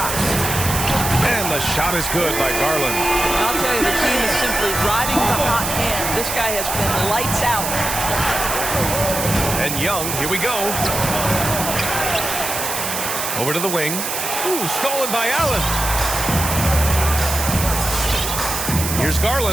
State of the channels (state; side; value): noise; right; hiss, 3 dB below the sound